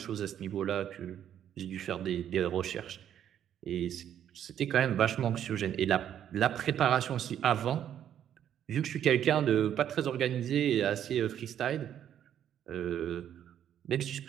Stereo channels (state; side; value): quieter; left; 10.0 dB